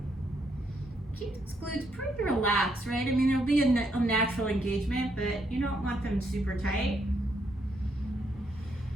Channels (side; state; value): both; normal; correlation 0.75